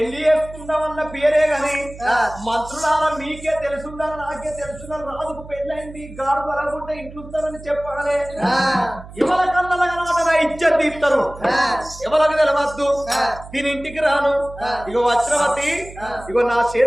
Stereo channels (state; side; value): noise; right; hum, 16 dB below the sound